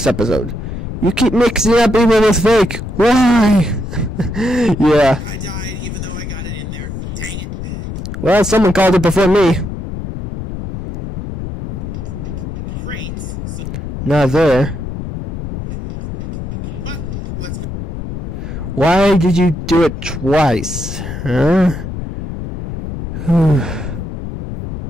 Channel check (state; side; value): noise; left; rumble, 6 dB below the sound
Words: episode. You keep mixing up even with fake. Why? Yeah. I died even though I got it in there. Dang it. Well, someone called it before me. Crates. So, Not there. but let's go. Why did you do it twice? Huh?